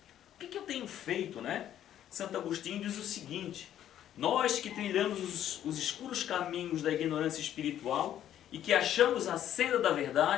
O que eu tenho feito, né? Santo Agostinho diz o seguinte: nós que trilhamos os escuros caminhos da ignorância espiritual e que achamos a senda da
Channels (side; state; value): right; quieter; 11.1 dB